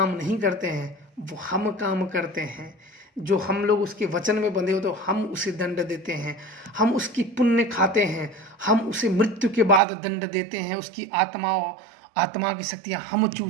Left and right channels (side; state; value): left; drops out; at 9.8 s